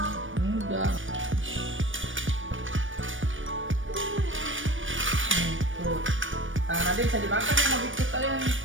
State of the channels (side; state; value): left; late; 0.57 ms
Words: Enggak. Tuh. Tangan adek bisa dimakan ya mau ikut kalian.